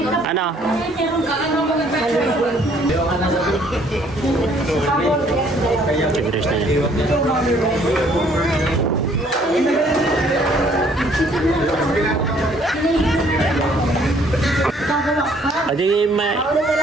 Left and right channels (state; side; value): normal; both; correlation 0.62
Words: Ano? Tigres na yan. Adi may...